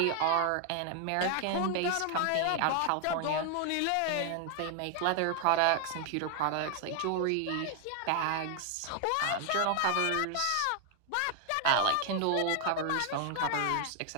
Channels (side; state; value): both; different; correlation 0.00